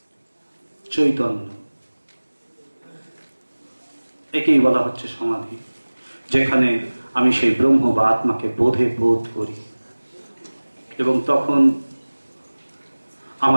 চৈতন্য। একেই বলা হচ্ছে সমাধি, যেখানে আমি সেই ব্রহ্ম বা আত্মাকে বোধে বোধ করি। এবং তখন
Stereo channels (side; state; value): both; inverted; correlation -1.00